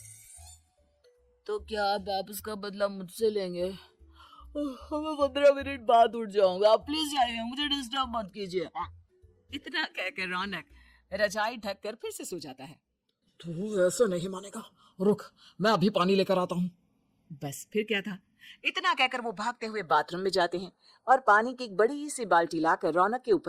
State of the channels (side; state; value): both; identical; correlation 1.00